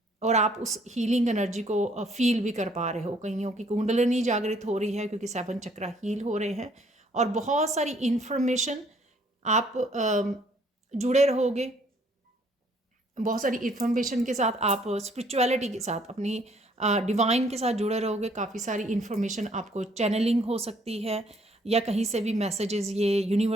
और आप उस हीलिंग एनर्जी को फील भी कर पा रहे हो। कईयों की कुंडलिनी जागृत हो रही है क्योंकि 7 चक्रा हील हो रहे हैं, और बहुत सारी इन्फॉर्मेशन आप जुड़े रहोगे। बहुत सारी इन्फॉर्मेशन के साथ आप स्पिरिचुअलिटी के साथ, अपनी डिवाइन के साथ जुड़े रहोगे, काफ़ी सारी इन्फॉर्मेशन आपको चैनलिंग हो सकती है, या कहीं से भी मैसेजेस ये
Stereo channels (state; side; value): normal; both; correlation 0.63